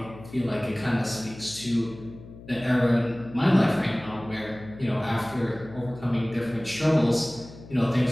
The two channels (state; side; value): noise; left; hum, 17 dB below the sound